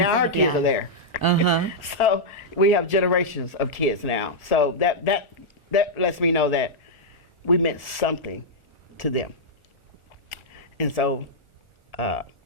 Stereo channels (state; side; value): late; right; 1.4 ms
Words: her kids are there. Uh-huh. So we have generations of kids now. So that lets me know that we meant something to them. And so